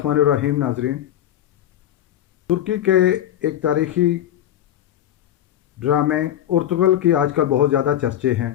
الرحیم۔ ناظرین، ترکی کے ایک تاریخی ڈرامے ارطغرل کی آج کل بہت زیادہ چرچے ہیں۔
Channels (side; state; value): right; quieter; 11.6 dB